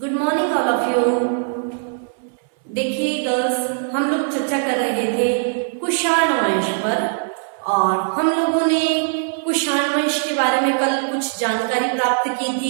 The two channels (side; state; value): left; silent; 65 dB below the other